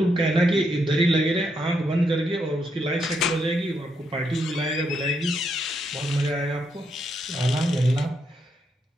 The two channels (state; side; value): normal; both; correlation 0.79